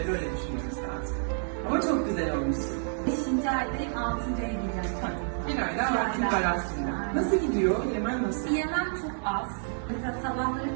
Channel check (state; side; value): silent; left; 58 dB below the other